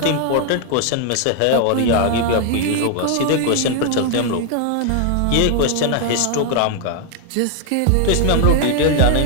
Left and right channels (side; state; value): both; different; correlation 0.00